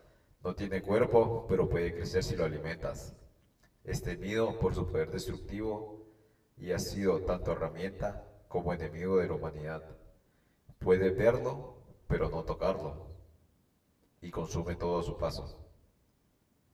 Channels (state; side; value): identical; both; correlation 1.00